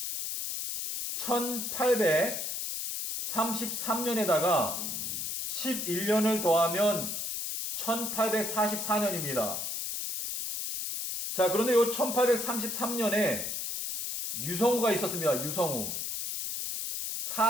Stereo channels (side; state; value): left; noise; hiss, 3 dB below the sound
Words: 1833년에다가 11년을 더하면 1844년입니다. 자, 그런데 이 1833년에 유성우가 있었습니다. 유성우.